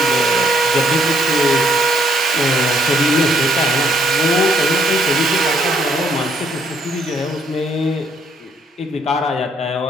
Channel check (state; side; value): normal; both; correlation 0.69